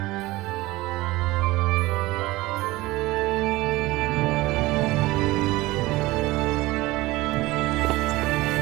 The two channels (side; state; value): left; quieter; 19.6 dB